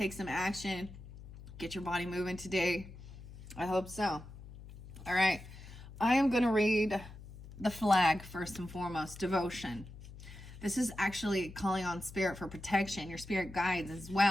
some action? Get your body moving today? I hope so. All right. I am going to read the flag first and foremost. Devotion. This is actually calling on spirit for protection. Your spirit guides as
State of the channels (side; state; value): left; noise; hum, 15 dB below the sound